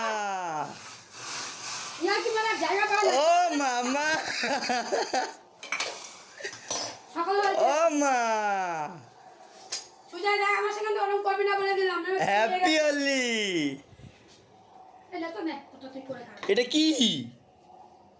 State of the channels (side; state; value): both; identical; correlation 1.00